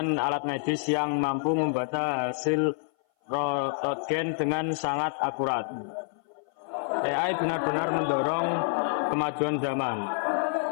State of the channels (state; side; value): silent; right; 57 dB below the other